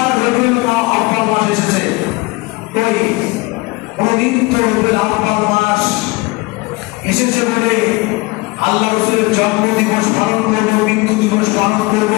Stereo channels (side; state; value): right; quieter; 23.4 dB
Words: রবিউল আউয়াল মাস এসেছে। ওই কোনদিন তো রবিউল আউয়াল মাস এসেছে বলে আল্লাহ রাসূলের জন্মদিবস পালন করবো, মৃত্যু দিবস পালন